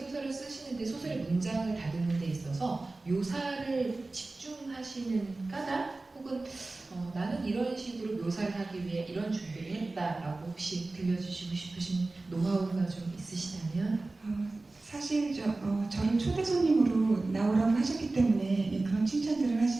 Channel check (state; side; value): quieter; left; 3.2 dB